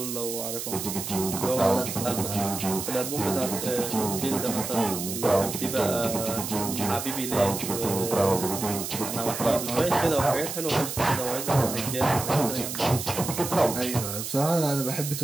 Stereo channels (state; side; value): noise; right; hiss, 6 dB below the sound